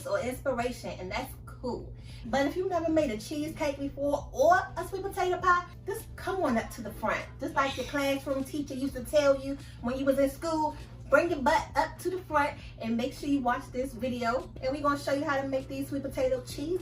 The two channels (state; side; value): identical; both; correlation 1.00